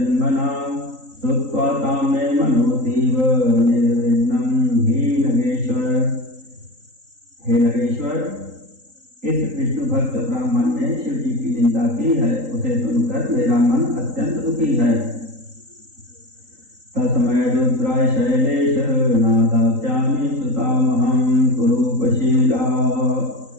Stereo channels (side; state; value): left; late; 3.8 ms